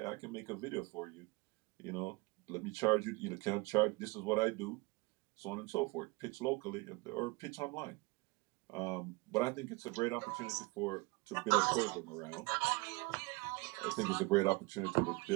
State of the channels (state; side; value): quieter; left; 24.8 dB